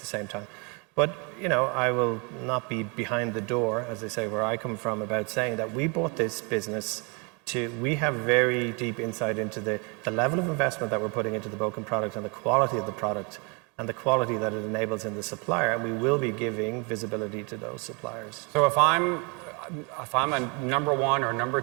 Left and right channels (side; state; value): left; quieter; 31.2 dB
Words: same time. But, I will not be behind the door, as they say, where I come from, about saying that we bought this business we have very deep insight into the level of investment that we're putting into the Bokan product and the quality of the product and the quality that it enables in the supplier, and we will be giving visibility to those suppliers. So if I'm a number 1 or number